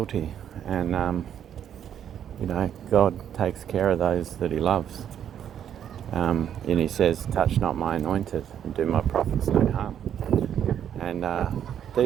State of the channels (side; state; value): left; quieter; 9.5 dB